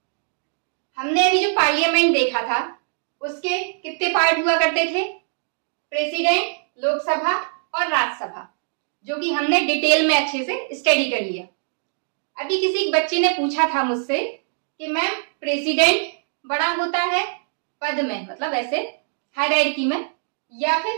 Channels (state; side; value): silent; left; 64 dB below the other